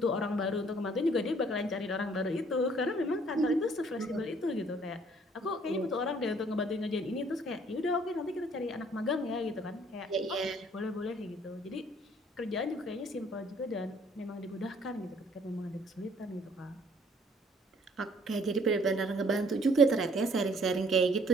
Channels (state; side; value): normal; both; correlation 0.60